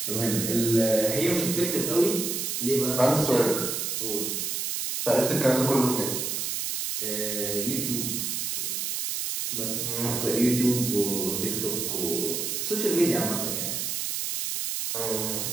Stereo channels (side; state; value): right; noise; hiss, 2 dB below the sound